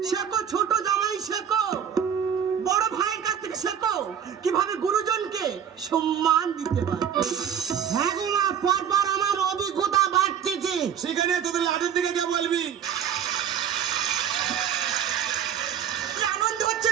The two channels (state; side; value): quieter; left; 8.7 dB